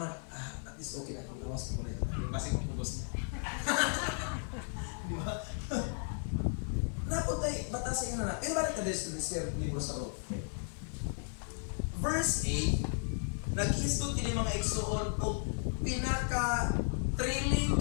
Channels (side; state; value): right; silent; 55 dB below the other